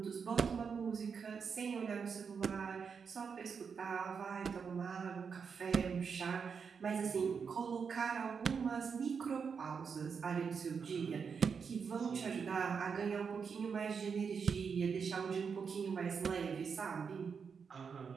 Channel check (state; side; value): quieter; left; 6.1 dB